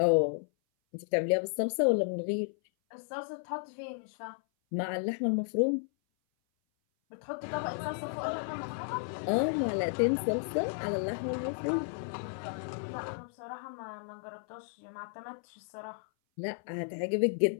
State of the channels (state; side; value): silent; right; 56 dB below the other